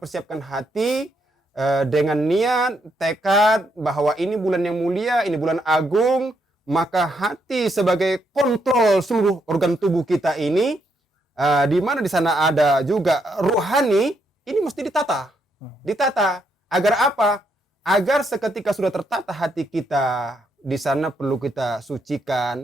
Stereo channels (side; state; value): both; normal; correlation 0.77